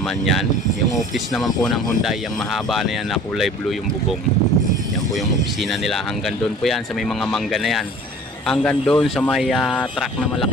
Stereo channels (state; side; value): normal; both; correlation 0.45